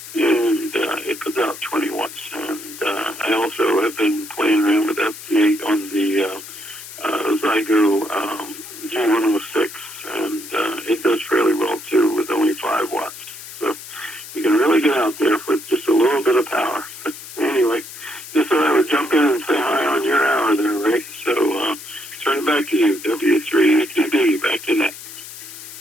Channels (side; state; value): left; noise; hiss, 13 dB below the sound